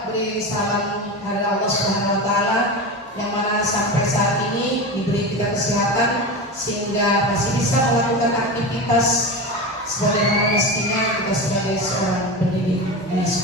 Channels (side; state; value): both; normal; correlation 0.24